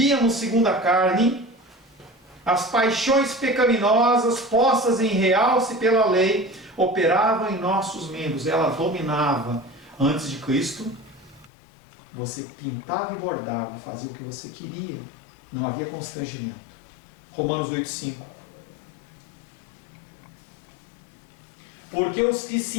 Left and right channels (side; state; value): right; drops out; at 11.5 s